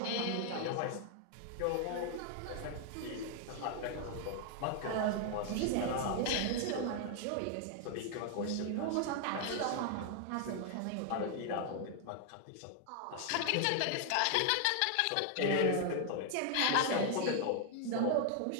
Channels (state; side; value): different; both; correlation 0.00